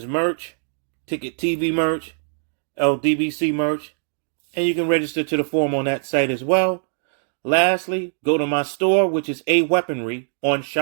merch, Ticket TV merch, LDBC merch, and you can register to the forum on that site as well. Lastly, go to my store, which is A Weaponry on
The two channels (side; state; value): left; silent; digital silence